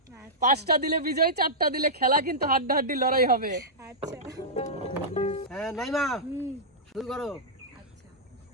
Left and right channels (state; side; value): normal; both; correlation -0.12